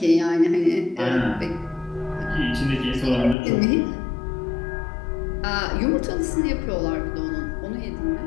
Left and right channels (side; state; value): right; drops out; at 3.4 s